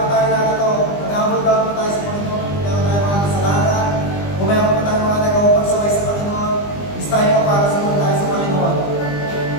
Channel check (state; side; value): late; right; 20 ms